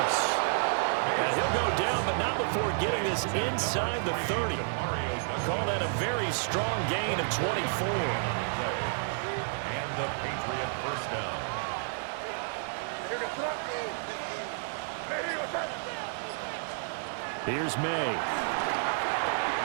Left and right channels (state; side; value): silent; left; digital silence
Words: And he'll go down, but not before getting this inside the 30. Call that a very strong gain of 24. And the Patriot first down. Here's May.